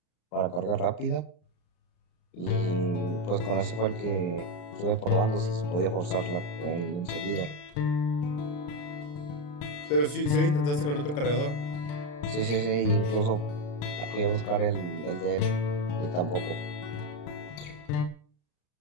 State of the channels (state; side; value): late; right; 34 ms